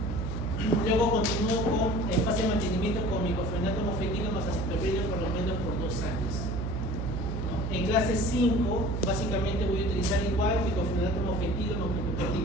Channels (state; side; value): noise; right; hum, 2 dB below the sound